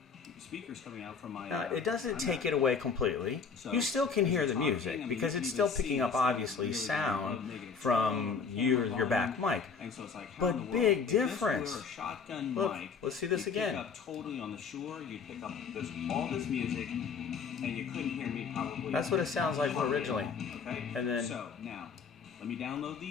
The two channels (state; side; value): quieter; right; 5.6 dB